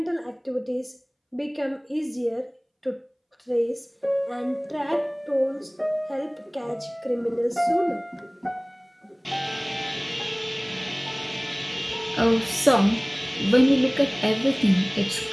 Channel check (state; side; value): identical; both; correlation 1.00